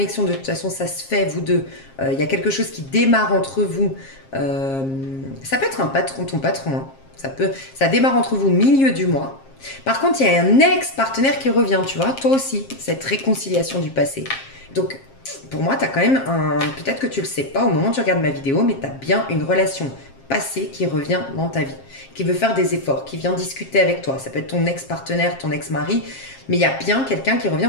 de toute façon ça se fait, vous deux, il y a quelque chose qui démarre entre vous, ça peut être un patron, ton patron, hein. Ça démarre entre vous milieu du mois. Par contre, il y a un ex-partenaire qui revient, tu vois, toi aussi, cette réconciliation du passé. Donc, pour moi, tu as quand même un... Peut-être que tu le sais pas au moment où tu regardes ma vidéo, mais tu as bien une relation passée qui revient dans ta vie, qui veut faire des efforts, qui vient discuter avec toi. Ça peut être ton ex-partenaire, ton ex-mari, mais il y a bien quelqu'un qui revient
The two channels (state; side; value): late; right; 7.5 ms